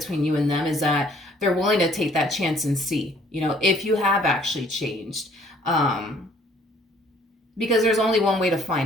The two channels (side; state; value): both; normal; correlation 0.59